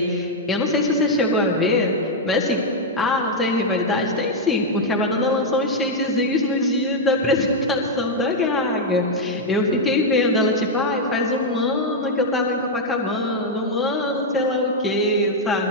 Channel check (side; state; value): both; normal; correlation 0.00